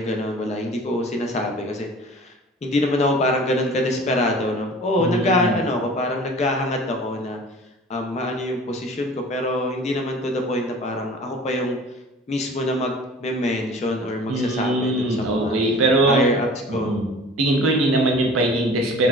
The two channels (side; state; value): both; normal; correlation 0.44